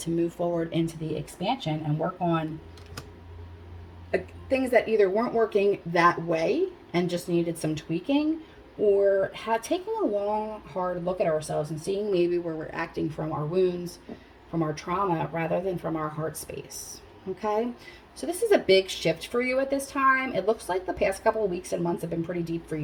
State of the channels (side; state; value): both; identical; correlation 1.00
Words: move forward into the expansion and work on things that either weren't working that way and just needed some tweaking, or taking a long, hard look at ourselves and seeing maybe where we're acting from our wounds, from our trauma, rather than from our heart space. Okay? So this is a big shift for you at this time. It looks like the past couple of weeks and months have been pretty deep for